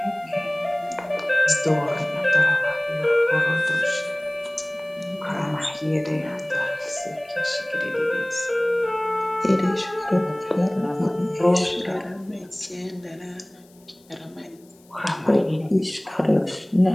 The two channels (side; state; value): left; noise; hiss, 30 dB below the sound